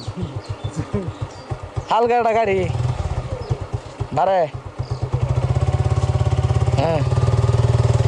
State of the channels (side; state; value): both; identical; correlation 1.00